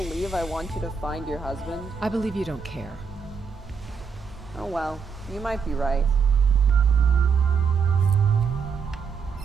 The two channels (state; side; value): quieter; left; 5.7 dB